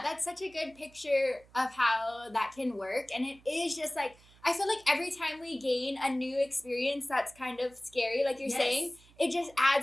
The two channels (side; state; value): right; noise; hum, 27 dB below the sound